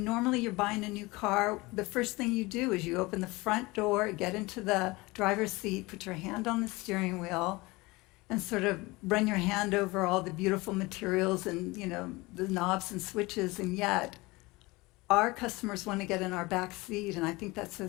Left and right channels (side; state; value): right; quieter; 22.8 dB